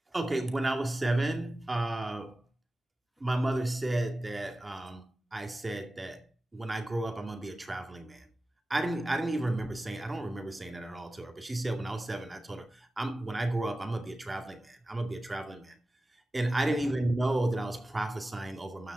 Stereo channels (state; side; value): normal; both; correlation 0.95